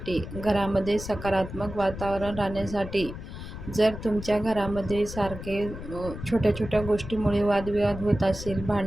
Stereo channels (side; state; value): left; noise; rumble, 10 dB below the sound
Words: घरामध्ये सकारात्मक वातावरण राहण्यासाठी, जर तुमच्या घरामध्ये सारखे छोट्या छोट्या गोष्टीमुळे वादविवाद होत असेल,